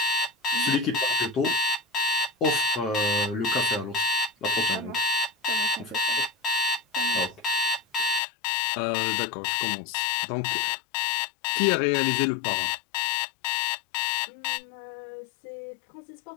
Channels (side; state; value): right; drops out; at 8.2 s